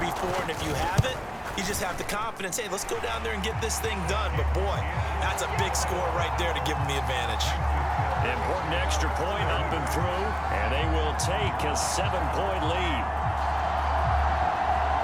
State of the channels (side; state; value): both; identical; correlation 1.00